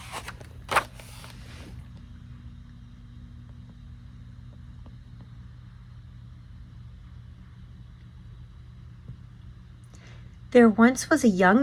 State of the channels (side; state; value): both; identical; correlation 1.00